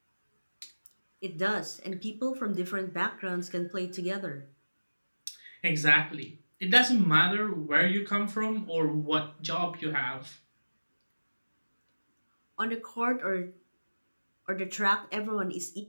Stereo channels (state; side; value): inverted; both; correlation -1.00